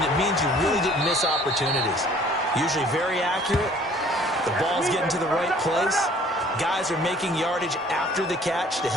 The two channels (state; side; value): normal; both; correlation 0.54